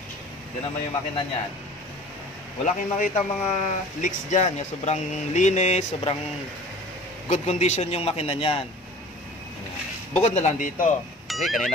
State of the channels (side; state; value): both; normal; correlation 0.44